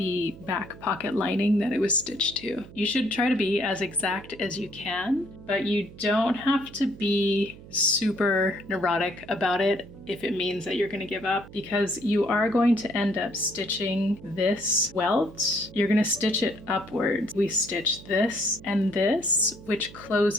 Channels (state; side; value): noise; right; hum, 18 dB below the sound